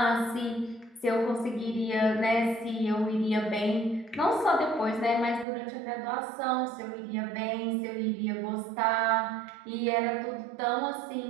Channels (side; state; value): left; drops out; at 5.5 s